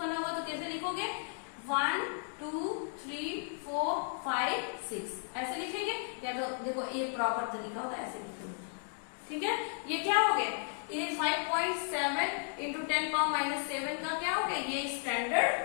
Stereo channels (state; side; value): silent; right; 55 dB below the other